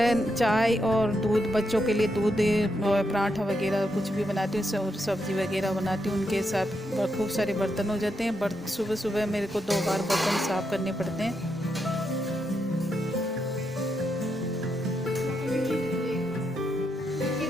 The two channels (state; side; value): normal; both; correlation 0.82